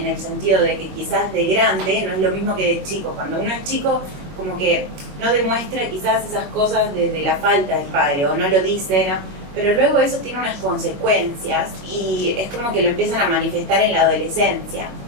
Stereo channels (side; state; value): left; late; 21 ms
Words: el sentido de que quizás de grande no es lo mismo que de chico. Cuando uno es chico, como que no demuestra quizás esas cosas de la falta del padre, o no lo dice, ¿no? Pero luego eso tiene unas consecuencias y es como que lo empiezan a manifestar en la adolescencia.